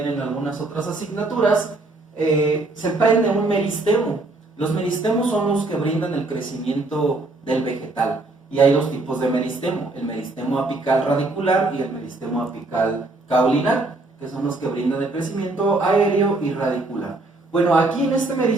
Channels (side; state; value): left; quieter; 3.1 dB